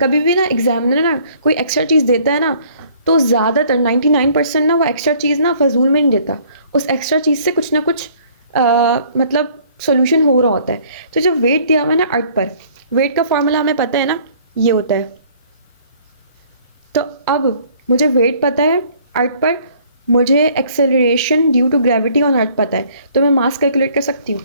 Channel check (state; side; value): inverted; both; correlation -0.58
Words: भी ना एग्जामिनर ना कोई एक्स्ट्रा चीज़ देता है ना, तो ज़्यादातर 99% ना वो एक्स्ट्रा चीज़ ना फजूल में नहीं देता, उस एक्स्ट्रा चीज़ से कुछ ना कुछ मतलब सोल्यूशन हो रहा होता है। तो जब वेट दिया हुआ है ना अर्थ पर, वेट का फॉर्मूला हमें पता है ना, ये होता है। तो अब मुझे वेट पता है अर्थ पर, मुझे acceleration due to gravity on earth पता है, तो मैं मास कैलकुलेट कर सकती हूँ।